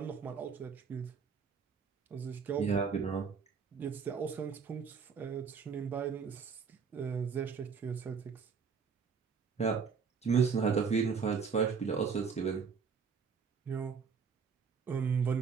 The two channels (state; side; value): quieter; left; 5.9 dB